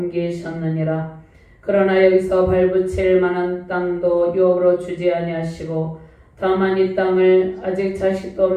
그러나 여기서 발붙일 만한 땅도 유업으로 주지 아니하시고 다만 이 땅을 아직 자식도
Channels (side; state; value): both; identical; correlation 1.00